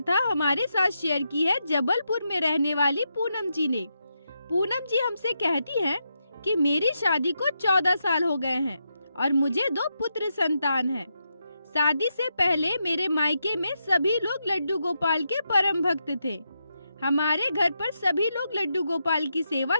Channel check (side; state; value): both; inverted; correlation -0.84